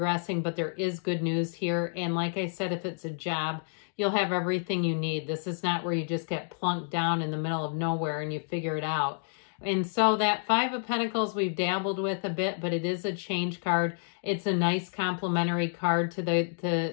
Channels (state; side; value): silent; right; digital silence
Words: but there is good news here. And like I said, if it's a job, you'll have everything you need. This is not where you just get plunked down in the middle of nowhere and you figure it out. And so that Five of Pentacles we've dabbled with a bit, but it is a change card. It's a nice complementary card to